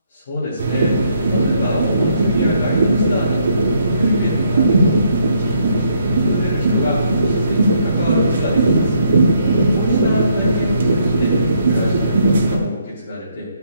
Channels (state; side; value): inverted; both; correlation -0.71